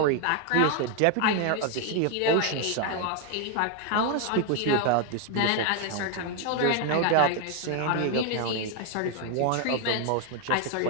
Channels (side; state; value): both; different; correlation 0.01